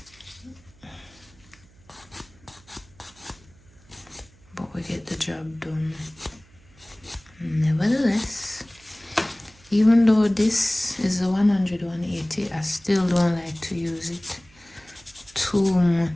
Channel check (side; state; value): right; noise; hum, 27 dB below the sound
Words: Even though this is a 180, I still don't like to use it too